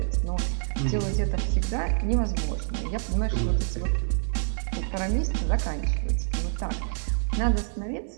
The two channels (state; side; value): silent; left; 57 dB below the other